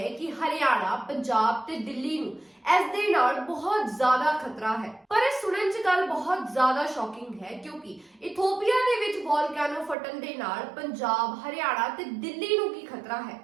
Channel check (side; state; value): left; drops out; at 10.0 s